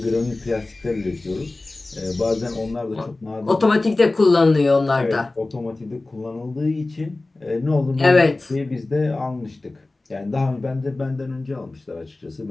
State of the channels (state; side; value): quieter; right; 3.1 dB